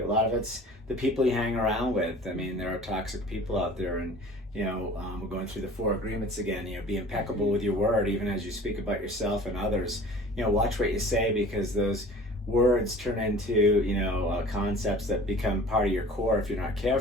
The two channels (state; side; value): normal; both; correlation 0.45